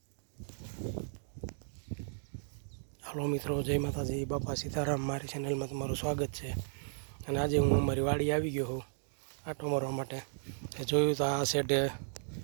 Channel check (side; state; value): left; silent; digital silence